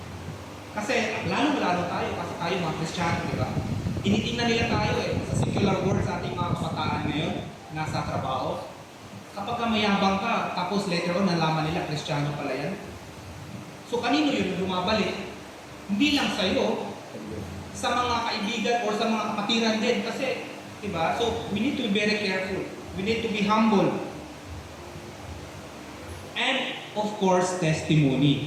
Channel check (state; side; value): identical; both; correlation 1.00